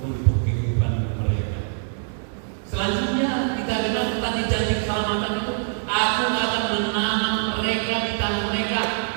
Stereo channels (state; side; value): silent; left; digital silence